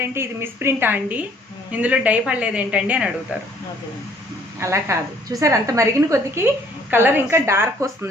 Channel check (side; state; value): both; normal; correlation 0.60